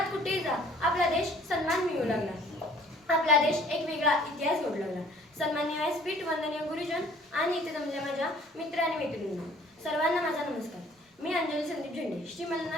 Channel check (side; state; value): both; normal; correlation 0.55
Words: कुठेही जा आपला देश सन्मान मिळू लागला, आपला देश एक वेगळा इतिहास जोडू लागला. सन्माननीय व्यासपीठ, वंदनीय गुरुजन आणि इथे जमलेल्या माझ्या मित्र आणि मैत्रिणींनो, सर्वांना माझा नमस्कार. मी अंजली संदीप झेंडे, श्री